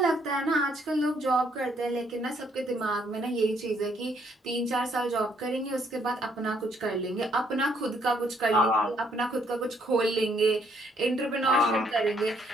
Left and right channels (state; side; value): normal; both; correlation 0.69